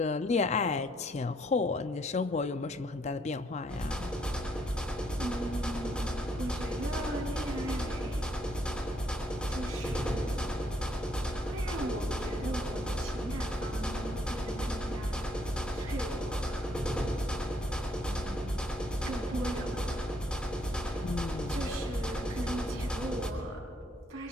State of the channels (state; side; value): normal; both; correlation 0.69